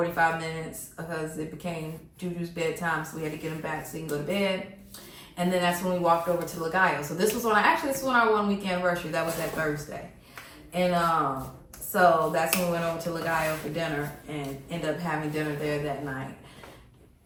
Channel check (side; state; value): both; identical; correlation 1.00